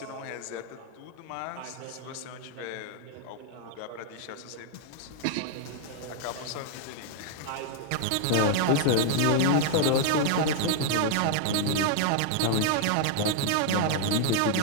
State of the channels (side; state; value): both; different; correlation 0.00